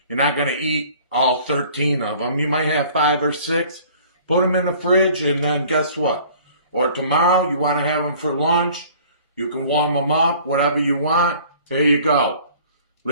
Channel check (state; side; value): inverted; both; correlation -0.51